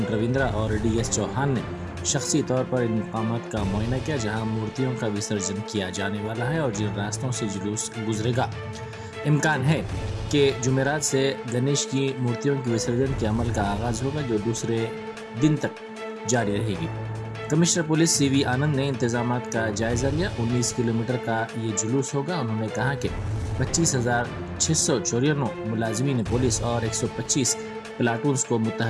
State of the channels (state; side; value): identical; both; correlation 1.00